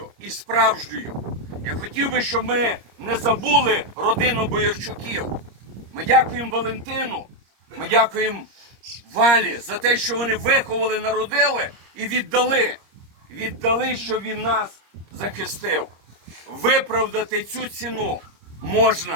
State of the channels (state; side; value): late; left; 26 ms